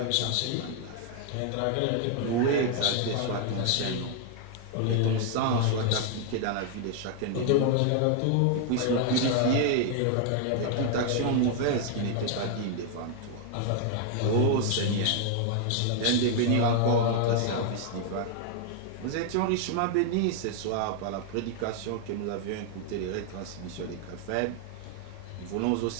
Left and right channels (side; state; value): both; different; correlation 0.00